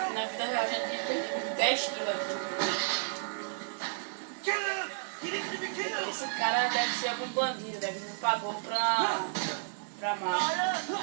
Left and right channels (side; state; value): left; silent; 56 dB below the other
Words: na vida real, já teria perdido 10 quilos aqui. Esse cara deve ser algum bandido, deve me pagou pra máfia.